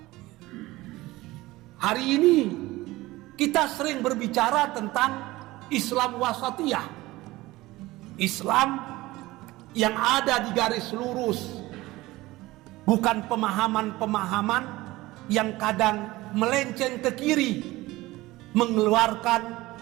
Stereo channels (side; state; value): left; quieter; 19.0 dB